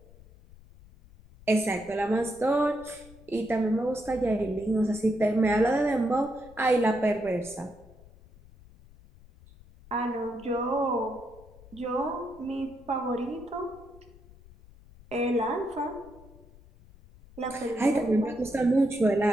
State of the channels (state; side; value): noise; left; rumble, 23 dB below the sound